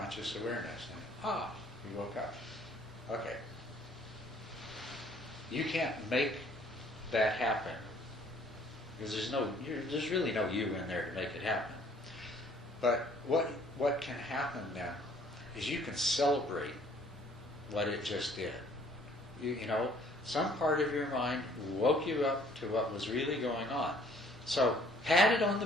awareness. And, you woke up. Okay. You can't make that happen, because there's really no you in there to make it happen. But what can happen then is you can celebrate what it just did. You know, some part of your mind woke you up to what was really going on. So pat it on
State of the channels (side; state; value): both; normal; correlation 0.59